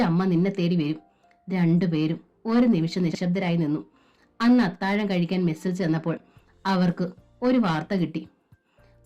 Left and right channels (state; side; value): identical; both; correlation 1.00